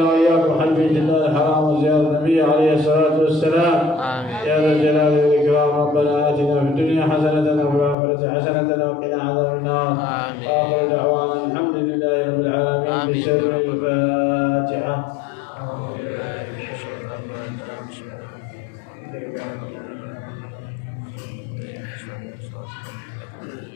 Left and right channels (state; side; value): drops out; right; at 8.0 s